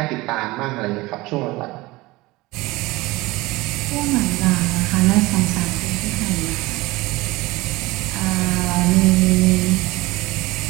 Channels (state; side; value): quieter; left; 20.8 dB